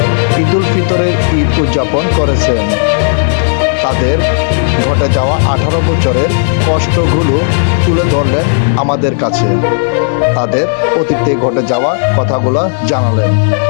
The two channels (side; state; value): right; silent; 74 dB below the other